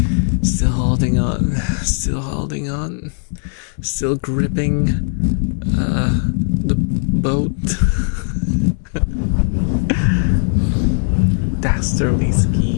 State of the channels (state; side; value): silent; right; 63 dB below the other